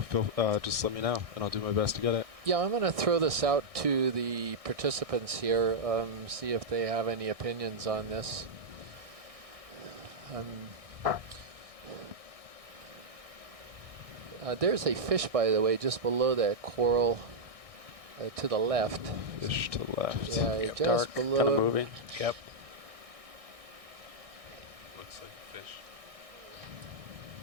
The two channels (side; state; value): left; late; 1.6 ms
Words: just let me know, and I'll do my best to get it. Yeah, I'm going to throw this out to the participants here, see if they have any opinions on this. There's a fish, by the way, just below that coral to the left. Fish to the left. Yeah, Yep. just Dark, below. kind of moving. Yep. Looks like a fish.